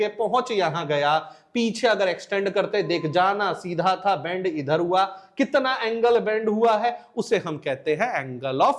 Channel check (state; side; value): identical; both; correlation 1.00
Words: पहुंच यहां गया। पीछे अगर एक्सटेंड करते देख, जाना सीधा था, बेंड इधर हुआ। कितना एंगल बेंड हुआ है उसे हम कहते हैं angle